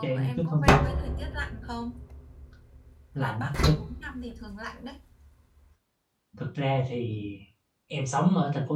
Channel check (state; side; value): identical; both; correlation 1.00